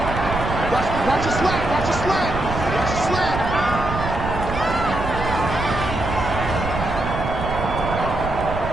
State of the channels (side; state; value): right; noise; rumble, 6 dB below the sound